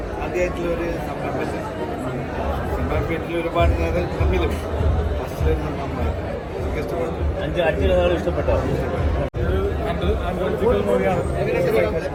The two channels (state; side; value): identical; both; correlation 1.00